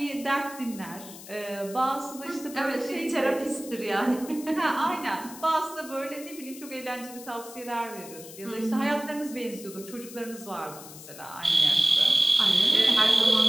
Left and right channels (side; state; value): left; noise; hiss, 15 dB below the sound